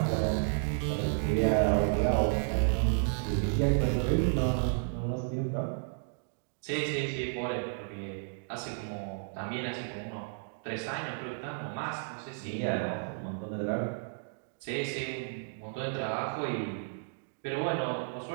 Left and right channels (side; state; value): left; silent; digital silence